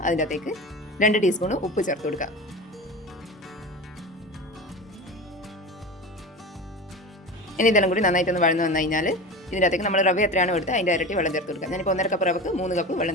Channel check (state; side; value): normal; both; correlation 0.29